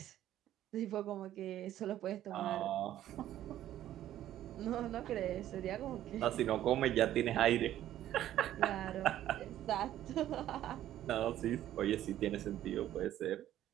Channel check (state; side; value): quieter; left; 12.6 dB